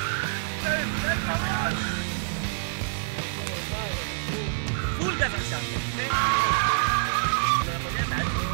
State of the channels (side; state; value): left; silent; digital silence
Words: פול גז עכשיו.